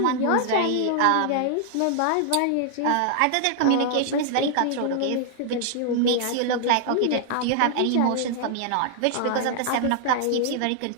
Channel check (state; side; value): different; both; correlation 0.00